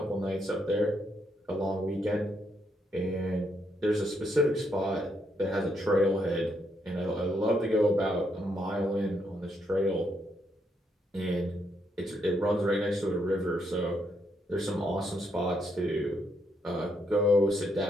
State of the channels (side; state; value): both; normal; correlation 0.77